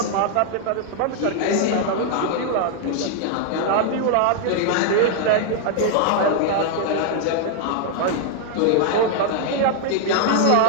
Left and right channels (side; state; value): both; different; correlation 0.00